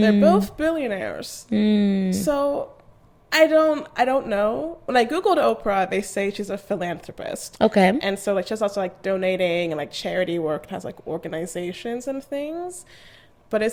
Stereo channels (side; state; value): both; identical; correlation 1.00